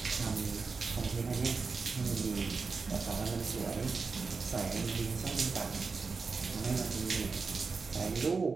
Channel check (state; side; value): quieter; left; 4.6 dB